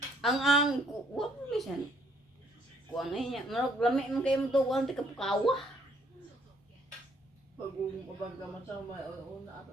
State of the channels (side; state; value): both; normal; correlation 0.65